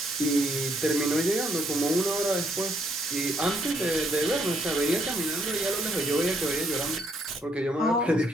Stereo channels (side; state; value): both; normal; correlation 0.71